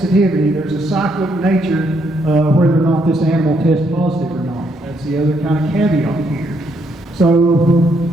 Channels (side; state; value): both; normal; correlation 0.74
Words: there's a cyclic nature whether or not this animal tests positive or not. That's the other kind of caveat here. So